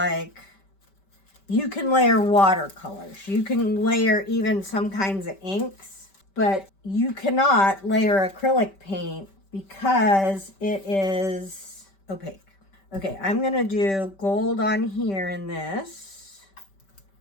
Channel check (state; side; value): late; right; 5.2 ms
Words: you can layer watercolors, you can layer even some kinds of inks, but you cannot layer acrylic paint because it is opaque. Okay, I'm gonna do gold on here in this